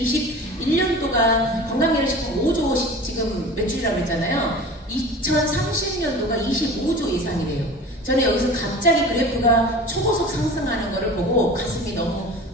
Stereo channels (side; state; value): both; normal; correlation 0.37